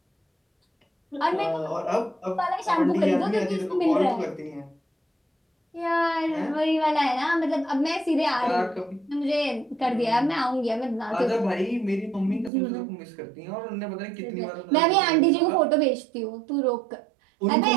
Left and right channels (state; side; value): drops out; left; at 12.5 s